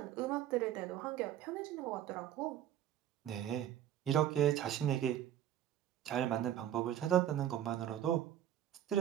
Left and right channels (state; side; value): quieter; left; 11.2 dB